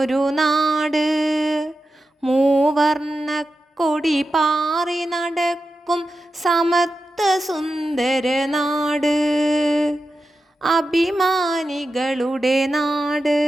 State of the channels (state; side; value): normal; both; correlation 0.91